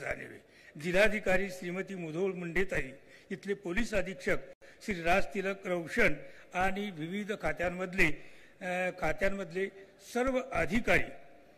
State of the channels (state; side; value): identical; both; correlation 1.00